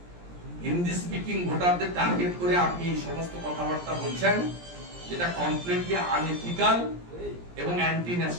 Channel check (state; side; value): late; left; 17 ms